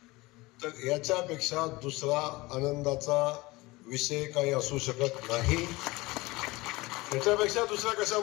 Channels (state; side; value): quieter; right; 21.6 dB